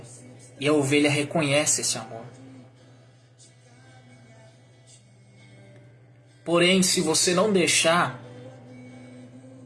E a ovelha reconhece esse amor. Porém, se você não deixar,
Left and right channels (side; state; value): both; identical; correlation 1.00